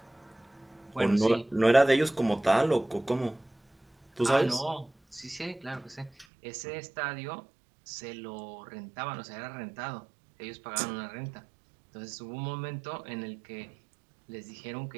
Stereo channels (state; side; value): drops out; left; at 6.2 s